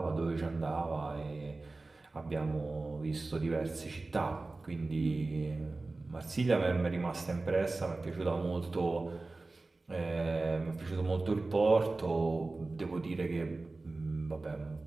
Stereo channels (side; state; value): left; quieter; 3.3 dB